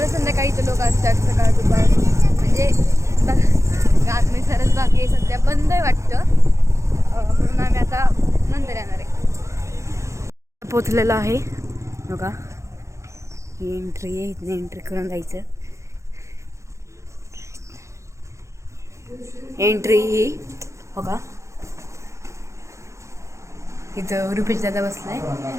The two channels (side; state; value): left; late; 0.14 ms